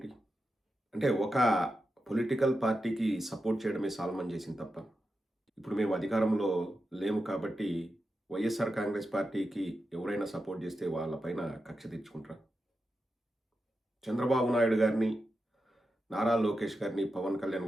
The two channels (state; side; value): normal; both; correlation 0.89